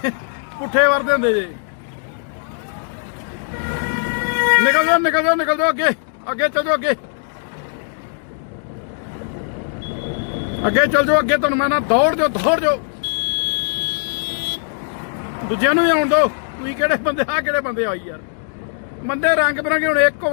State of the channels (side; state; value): right; silent; digital silence